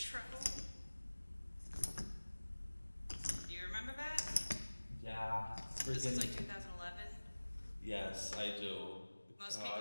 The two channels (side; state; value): both; inverted; correlation -1.00